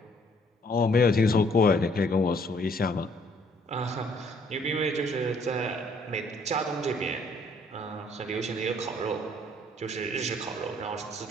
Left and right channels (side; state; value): both; normal; correlation 0.63